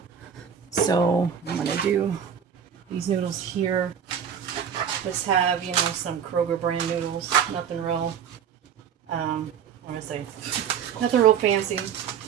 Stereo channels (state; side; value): quieter; left; 8.0 dB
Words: So I'm going to do these noodles here. Just have, you know, some Kroger brand noodles. Nothing real, what do I say? Nothing real fancy.